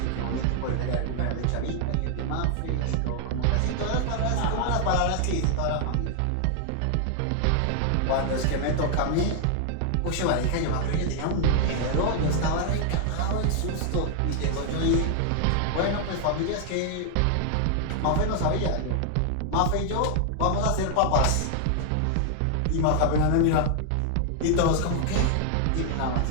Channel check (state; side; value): different; both; correlation 0.00